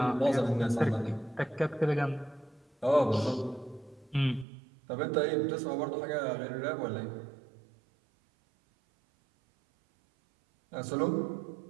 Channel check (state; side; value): drops out; left; at 4.5 s